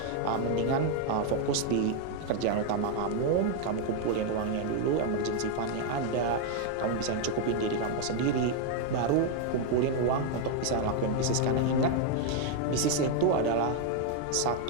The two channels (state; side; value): different; both; correlation 0.00